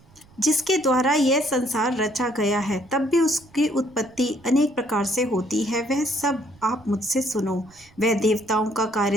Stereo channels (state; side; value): noise; right; rumble, 28 dB below the sound